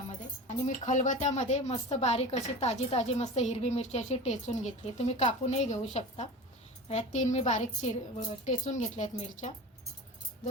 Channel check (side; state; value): both; normal; correlation 0.33